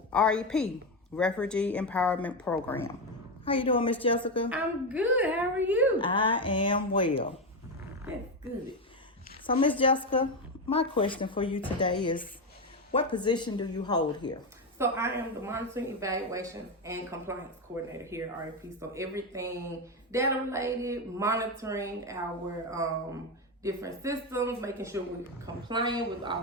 REP, Refugee Empowerment Program. How you doing, Miss Jessica? I'm good. How are you? I am well. That's good. So, Miss Jessica, my question for you today is, what position do you hold here? So I am the monitoring, evaluation, and compliance coordinator here at REP. So everything data related, monitoring our different systems, making sure we're compliant with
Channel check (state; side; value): normal; both; correlation 0.12